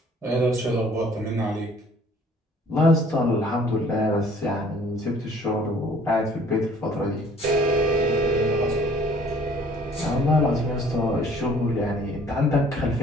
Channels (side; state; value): both; normal; correlation 0.55